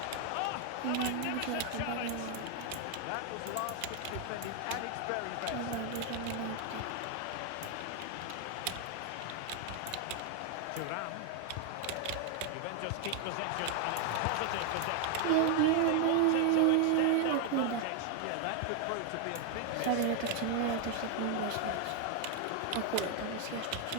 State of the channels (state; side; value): different; both; correlation 0.00